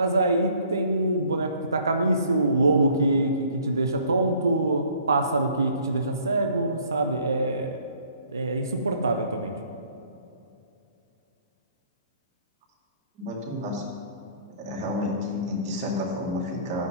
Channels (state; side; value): inverted; both; correlation -0.57